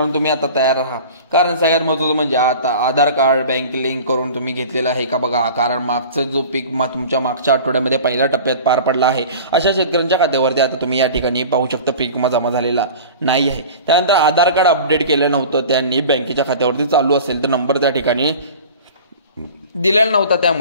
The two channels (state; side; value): inverted; both; correlation -0.39